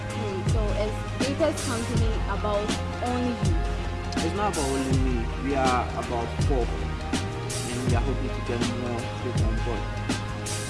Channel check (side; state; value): both; identical; correlation 1.00